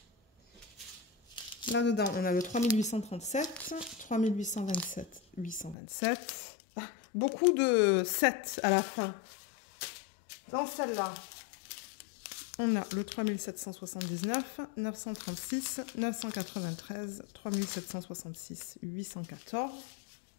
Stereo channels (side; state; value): right; drops out; at 5.8 s